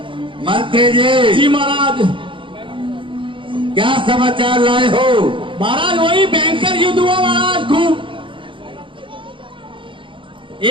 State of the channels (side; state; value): left; late; 0.25 ms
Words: मंत्री जी, जी महाराज। क्या समाचार लाए हो? महाराज वही भयंकर युद्ध हुआ महाराज, खूब।